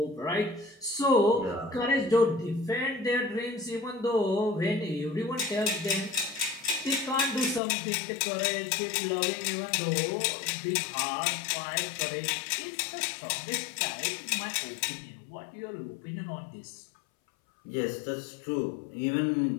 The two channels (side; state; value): right; drops out; at 7.6 s